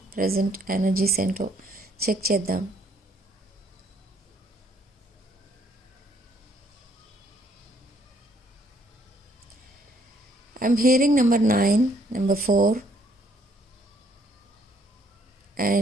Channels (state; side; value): normal; both; correlation 0.66